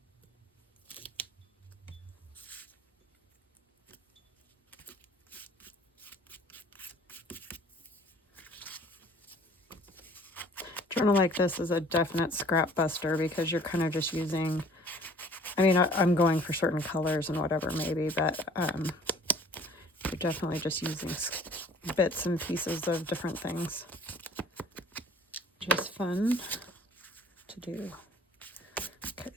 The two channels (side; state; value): both; normal; correlation 0.52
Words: Journal like this is a definite scrap buster because you're kind of just using, I mean, I'm going for certain colors and whatever maybe, but you're definitely just using bits and pieces of different things. Just fun to do. Okay,